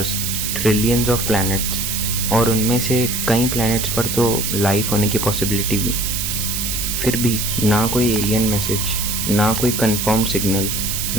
trillions of planets और उनमें से कई प्लैनेट्स पर तो लाइफ होने की पॉसिबिलिटी भी। फिर भी ना कोई एलियन मैसेज, ना कोई कंफर्म्ड सिग्नल,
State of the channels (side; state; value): right; noise; hiss, 2 dB below the sound